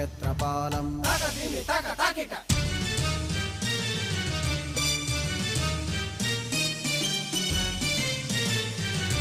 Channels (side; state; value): both; identical; correlation 1.00